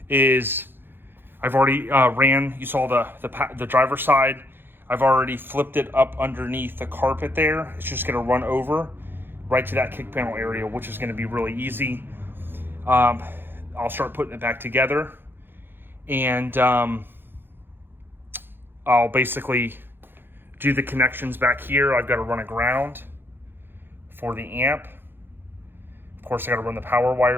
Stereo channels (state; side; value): late; left; 0.10 ms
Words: is I've already ran, you saw the driver's side. I've already flipped it up underneath the carpet there. It's just going to run over right to that kick panel area, which is going to be really easy. I'll start putting it back together, and I'll basically do the connections back here. I've got to run a ground for the amp. Of course, I got to run the power